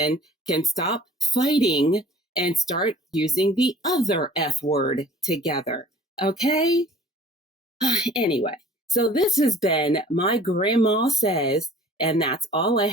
can stop fighting and start using the other F word together. Okay? Anyway, so this has been My Grandma Says, and that's all I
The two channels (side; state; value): both; normal; correlation 0.50